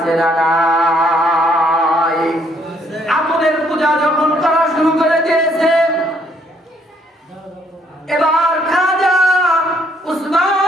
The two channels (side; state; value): both; normal; correlation 0.68